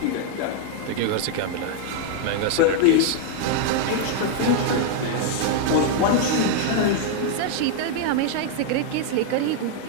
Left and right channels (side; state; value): both; different; correlation 0.00